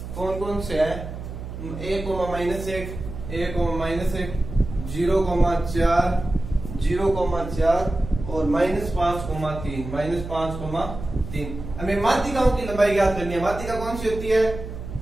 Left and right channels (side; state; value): right; noise; hum, 9 dB below the sound